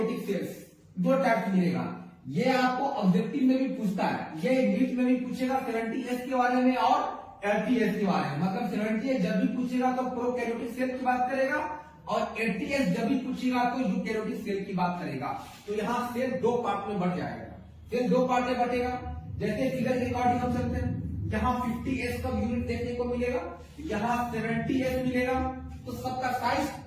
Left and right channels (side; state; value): both; identical; correlation 1.00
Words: cells, दो टाइप मिलेगा। ये आपको ऑब्जेक्टिव में भी पूछता है, ये नीट में भी पूछेगा 70S के बारे में और 80S के बारे में। मतलब 70S जब भी पूछेगा तो प्रोकैरियोटिक सेल की बात करेगा और 80S जब भी पूछेगा तो यूकैरियोटिक सेल की बात करेगा। तो यहाँ सेल दो पार्ट में बढ़ जाएगा, सेल दो पार्ट में बटेगा। जैसे फिगर के अकॉर्डिंग हम चलते हैं, यहाँ 50S का यूनिट देखने को मिलेगा, यहाँ 70S मिलेगा, तो सबका साइज